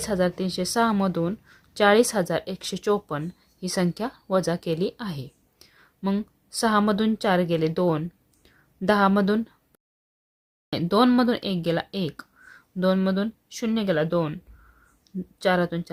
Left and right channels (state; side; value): identical; both; correlation 1.00